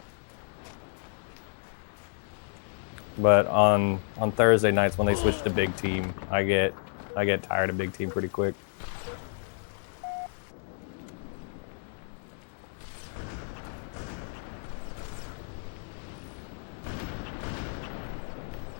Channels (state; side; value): silent; right; digital silence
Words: But on Thursday nights when they switch to big team, I get tired of big team pretty quick.